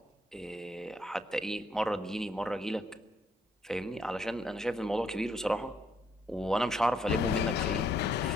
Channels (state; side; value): normal; both; correlation 0.71